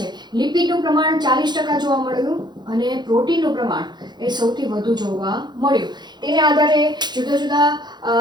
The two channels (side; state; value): left; late; 0.21 ms